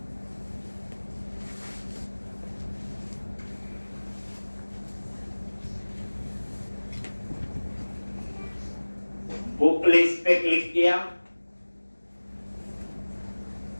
बुक लिस्ट पे क्लिक किया,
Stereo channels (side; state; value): both; inverted; correlation -1.00